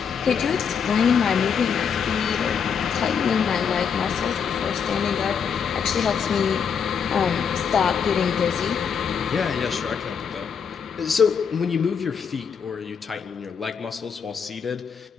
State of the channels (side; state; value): right; quieter; 6.8 dB